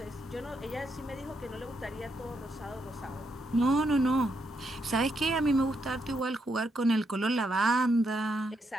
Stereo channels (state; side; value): normal; both; correlation 0.79